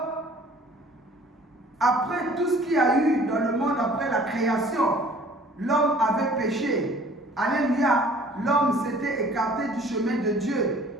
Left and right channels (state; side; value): normal; both; correlation 0.52